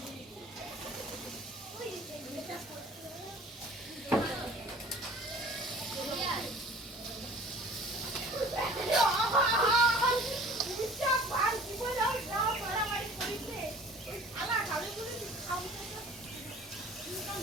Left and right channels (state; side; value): normal; both; correlation 0.47